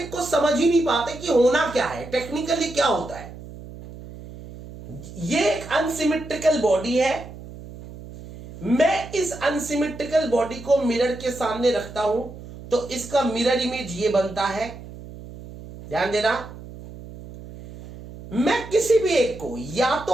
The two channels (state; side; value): noise; right; hum, 15 dB below the sound